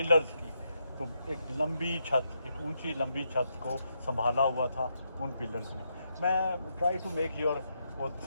की, तो एक लंबी छत, एक ऊंची लंबी छत को संभाला हुआ था उन पिलर्स ने। मैं ट्राई टू मेक योर वो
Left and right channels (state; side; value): inverted; both; correlation -0.81